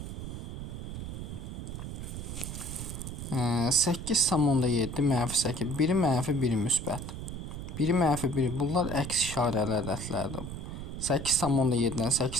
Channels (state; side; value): noise; right; rumble, 7 dB below the sound